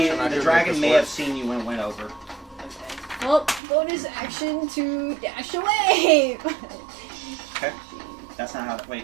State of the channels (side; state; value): left; drops out; at 3.6 s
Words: action. I the do dragon think may this have seen you when it went over. Well, bonus action to dash away. Okay. That's not how. Wait.